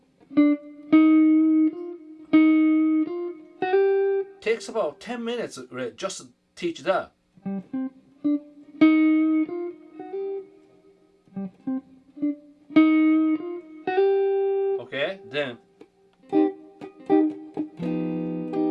takes about 10 minutes just to teach that. Okay, then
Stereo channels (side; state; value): both; identical; correlation 1.00